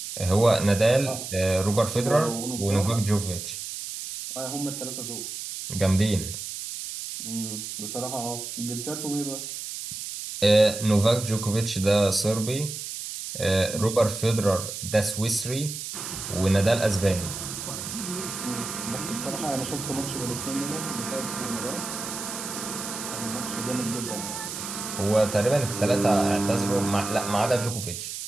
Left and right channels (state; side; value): noise; right; hiss, 7 dB below the sound